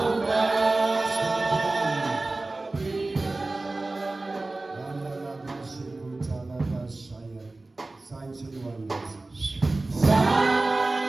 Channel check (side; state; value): left; quieter; 3.1 dB